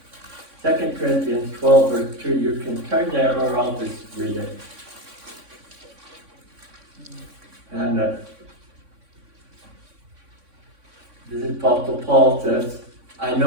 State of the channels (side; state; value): left; late; 3.6 ms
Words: 2 Corinthians 12, verse 2. You can turn there or I'll just read it. And this is Apostle Paul says, I